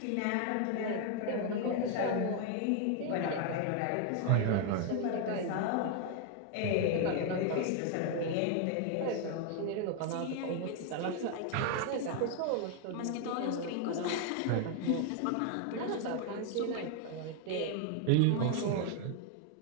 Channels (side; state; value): both; different; correlation 0.00